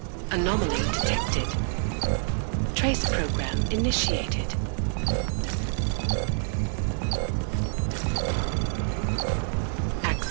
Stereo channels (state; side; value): silent; left; 60 dB below the other